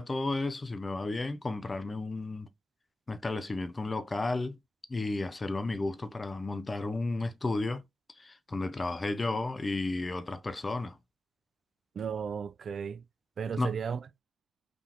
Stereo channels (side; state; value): both; normal; correlation 0.93